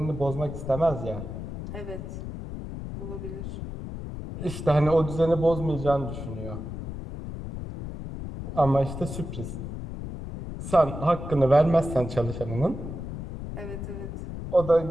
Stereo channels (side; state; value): left; noise; rumble, 8 dB below the sound